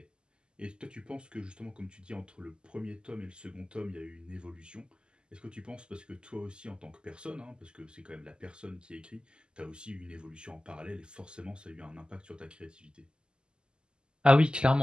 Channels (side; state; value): left; late; 0.048 ms